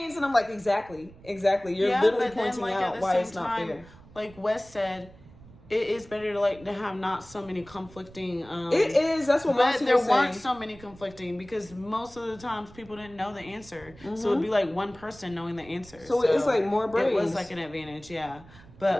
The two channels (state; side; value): noise; right; rumble, 22 dB below the sound